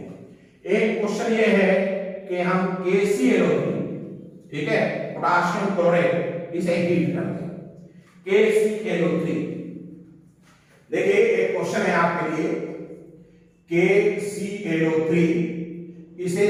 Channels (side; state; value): both; identical; correlation 1.00